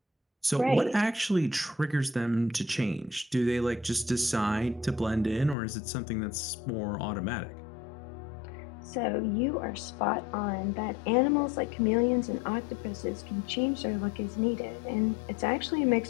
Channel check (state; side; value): drops out; right; at 5.6 s